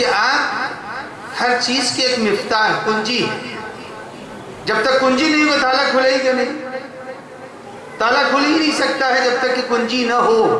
آپ ہر چیز کے ایک مفتاح، کنجی ہے۔ جب تک کنجی نہیں ہو تالا کھلے گا نہیں، تالا کھل ہی نہیں سکتا ہے جب تک کہ کنجی نہ ہو،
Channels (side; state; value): both; identical; correlation 1.00